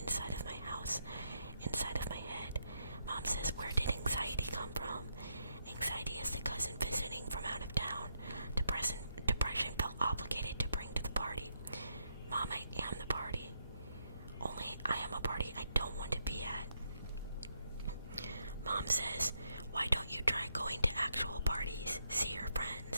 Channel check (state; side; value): inverted; both; correlation -0.78